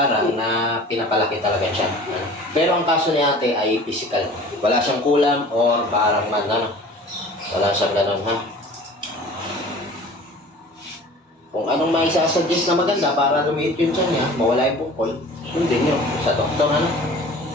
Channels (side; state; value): both; normal; correlation 0.44